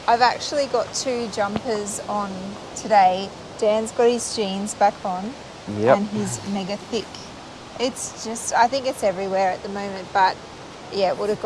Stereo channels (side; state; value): both; identical; correlation 1.00